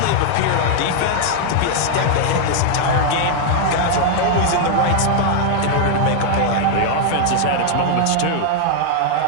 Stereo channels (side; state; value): both; different; correlation 0.00